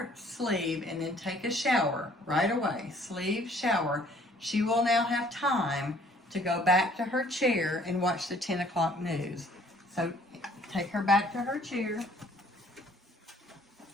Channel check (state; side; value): normal; both; correlation 0.58